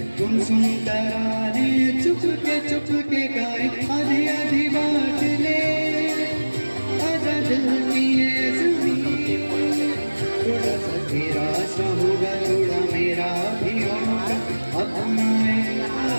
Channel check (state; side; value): inverted; both; correlation -1.00